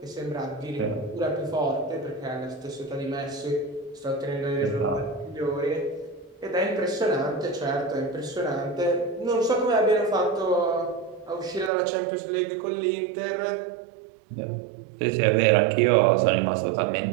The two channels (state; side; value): drops out; left; at 11.7 s